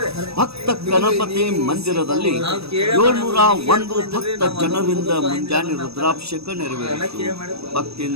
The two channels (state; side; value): late; left; 0.78 ms